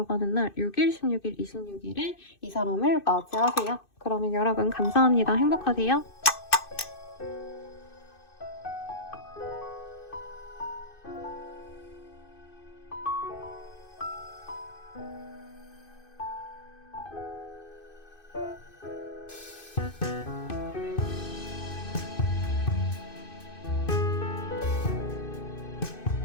날 6일, 16일, 26일에 이 사람을 맞이하세요. 그러면 여러분 감사합니다. 행복하세요.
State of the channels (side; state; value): right; late; 2.6 ms